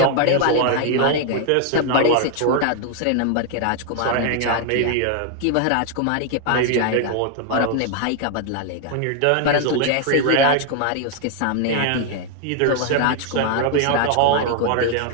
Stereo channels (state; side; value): different; both; correlation 0.00